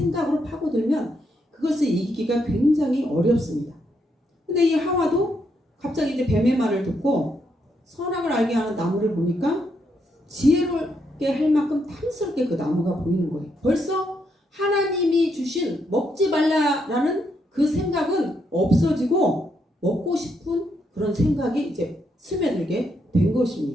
파고들면 그것을 이기기가 굉장히 어렵습니다. 근데 이 하와도 갑자기 이제 뱀의 말을 듣고 선악을 알게 하는 나무를 보니까 지혜롭게 할 만큼 탐스럽게 그 나무가 보이는 거예요. 벌써 하나님이 주신 먹지 말라라는 그 생각은 없어지고 먹고 싶은 그런 생각이 이제 스며들게 된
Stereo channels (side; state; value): both; normal; correlation 0.78